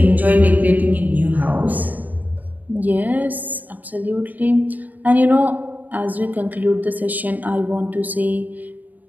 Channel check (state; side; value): late; left; 0.082 ms